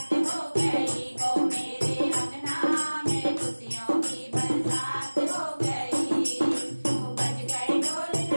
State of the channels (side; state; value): both; inverted; correlation -1.00